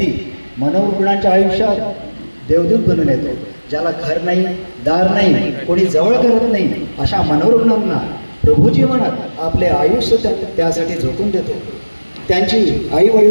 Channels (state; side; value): inverted; both; correlation -1.00